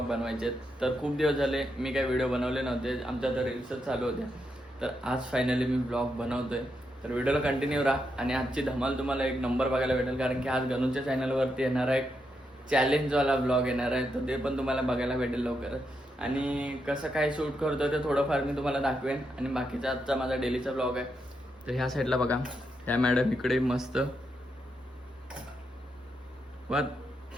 बनवायचे आहेत. तर खूप दिवस झाले मी काही व्हिडिओ बनवले नव्हते, आमच्या तर रील्सच चालू होत्या. तर आज फायनली मी व्लॉग बनवतोय. तर व्हिडिओला कंटिन्यू राहा आणि आजची धमाल तुम्हाला एक नंबर बघायला भेटेल, कारण की आज गणूच्या चॅनलवरती येणार आहे चॅलेंजवाला ब्लॉग येणार आहे. तर ते पण तुम्हाला बघायला भेटेल लवकरच. आणि कसं काय शूट करतो ते थोडंफार मी तुम्हाला दाखवेन. आणि बाकीचा आजचा माझा डेलीचा ब्लॉग आहे. तर ह्या साईडला बघा, ह्या मॅडम इकडे मस्त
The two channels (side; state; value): both; normal; correlation 0.82